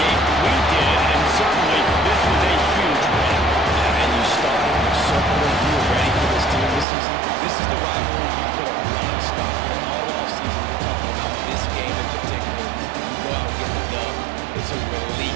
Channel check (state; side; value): drops out; left; at 6.9 s